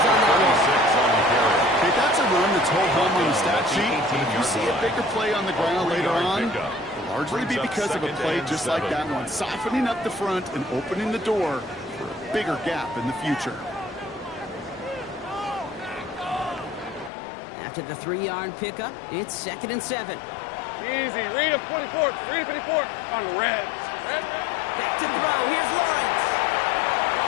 on that one. 6 on the carry. Hey, that's a run that's whole home on the stat sheet. But if you see a bigger play on the ground later on, it'll largely be because of a play just like that one, softening up the front and opening the door for a bigger gap in the future. After the 3-yard pickup, it's 2nd and 7. Easy. Read him, 44. Read him, 54. On the red. Red. Back to throw. Here's Lawrence.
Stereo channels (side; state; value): right; drops out; at 17.1 s